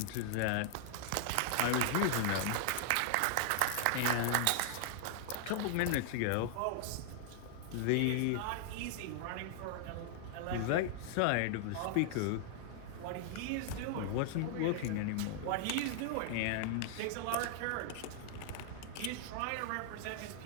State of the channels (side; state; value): both; different; correlation 0.00